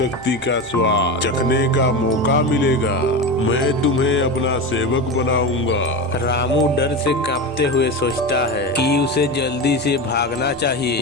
का स्वाद चखने का मौका मिलेगा। मैं तुम्हें अपना सेवक बनाऊंगा। रामू डर से कांपते हुए सोचता है कि उसे जल्दी से भागना चाहिए।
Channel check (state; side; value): normal; both; correlation 0.22